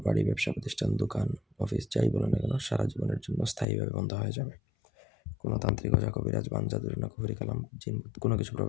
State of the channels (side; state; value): right; drops out; at 3.7 s